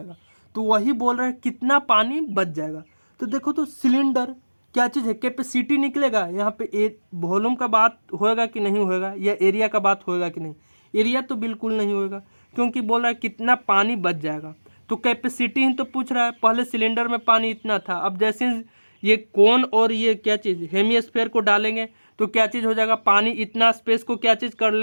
तो वही बोल रहा है कितना पानी बच जाएगा। तो देखो तो सिलेंडर क्या चीज़ है, कैपेसिटी निकलेगा, यहाँ पे वॉल्यूम का बात होएगा कि नहीं होएगा, या एरिया का बात होएगा कि नहीं, एरिया तो बिल्कुल नहीं होएगा, क्योंकि बोल रहा है कितना पानी बच जाएगा। तो कैपेसिटी ही तो पूछ रहा है, पहले सिलेंडर में पानी इतना था, अब जैसे ये कोन और ये क्या चीज़ हेमिस्फीयर को डालेंगे तो क्या चीज़ हो जाएगा, पानी इतना स्पेस को क्या चीज़ कर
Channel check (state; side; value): inverted; both; correlation -1.00